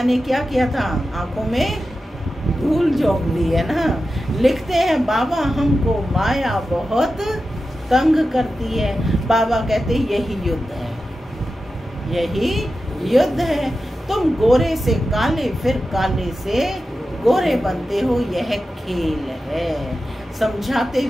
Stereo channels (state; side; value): normal; both; correlation 0.92